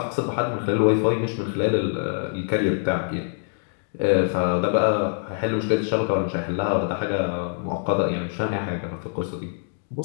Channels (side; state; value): right; silent; digital silence